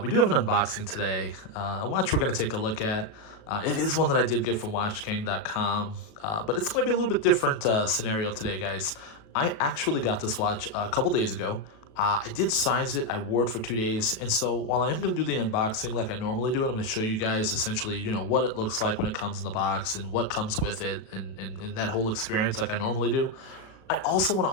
We do have an unboxing today. A watch we're going to take a look at. It is one that I did get from WatchGang.com, but it's going to be a little bit different scenario today, guys. I actually got this watch a couple days ago. I did size it, I wore it for 2 days, and so while I am going to do the unboxing like I normally do, and I'm going to show you guys essentially, what it looks like when it comes in the box and what comes with it and that whole experience like I normally do, I also want to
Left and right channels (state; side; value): late; right; 37 ms